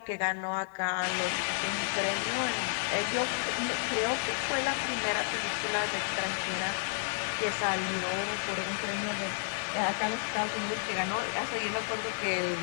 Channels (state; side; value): silent; right; digital silence